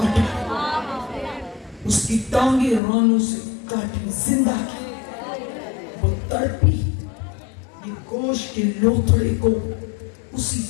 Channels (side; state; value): right; drops out; at 2.8 s